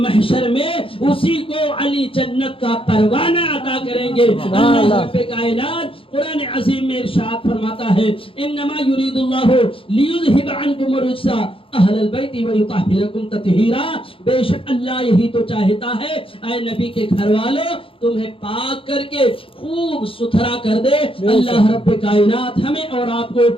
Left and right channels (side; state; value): right; late; 0.26 ms